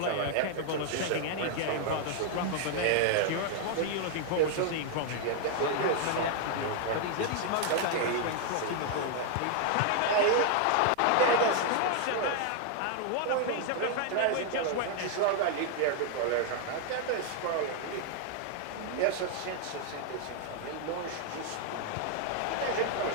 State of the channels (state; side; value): different; both; correlation 0.00